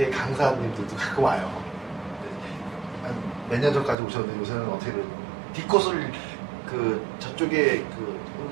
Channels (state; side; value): drops out; left; at 4.0 s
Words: 강사님들도 가끔 와요. 몇 년 전까지 오셨는데 요새는 어떻게 디코스를 그 저쪽에 그